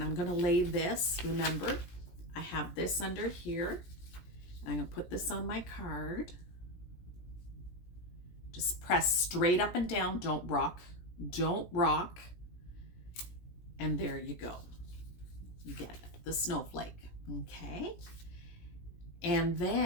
I'm going to lay this, remember, I have this under here. I'm going to put this on my card. Just press straight up and down. Don't rock. Don't rock. And there you go. You get it, the snowflake. Okay. And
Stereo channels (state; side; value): late; right; 17 ms